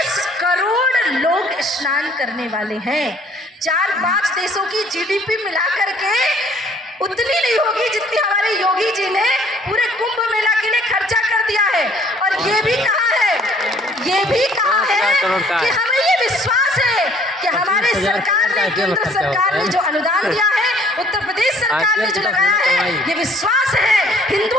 करोड़ लोग स्नान करने वाले हैं। 4-5 देशों की जीडीपी मिलाकर के उतनी नहीं होगी जितनी हमारे योगी जी ने पूरे कुंभ मेला के लिए खर्चा कर दिया है। और ये भी कहा है कि हमें ये विश्वास है कि हमारे सरकार ने, केंद्र सरकार ने जो अनुदान दिया है, उत्तर प्रदेश सरकार ने जो लगाया है, ये विश्वास है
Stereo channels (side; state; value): both; normal; correlation 0.58